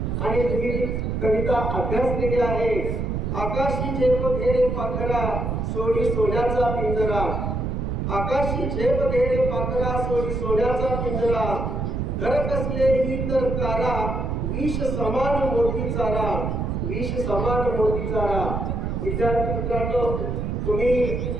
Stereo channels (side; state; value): right; noise; rumble, 1 dB below the sound